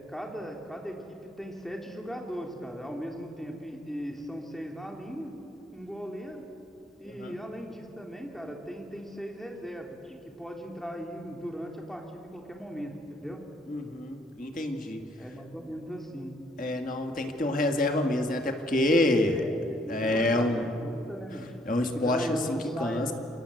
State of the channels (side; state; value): both; normal; correlation 0.67